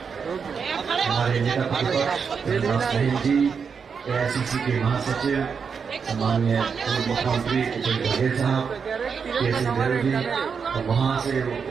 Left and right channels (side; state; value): left; quieter; 6.1 dB